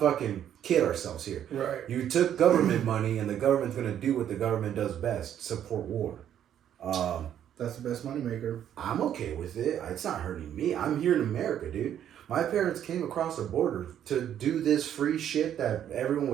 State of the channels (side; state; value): left; quieter; 10.1 dB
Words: kid ourselves here. Right. You took government money, and the government's gonna do what the government does best: support war. That's the best moneymaker. I'm okay with it. It's not hurting me. I'm here in America, dude. My parents came across the border to do this free shit that everyone